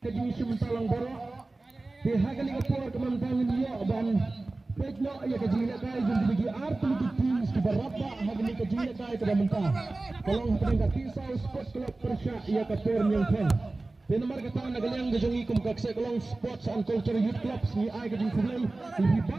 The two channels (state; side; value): quieter; left; 3.2 dB